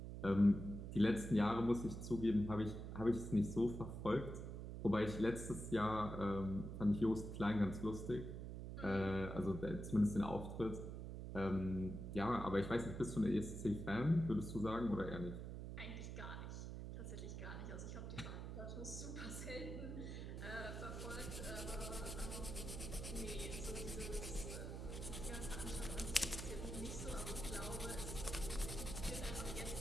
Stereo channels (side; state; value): right; noise; hum, 7 dB below the sound